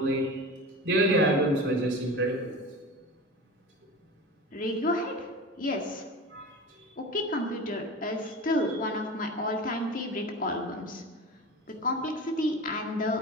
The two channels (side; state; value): both; normal; correlation 0.32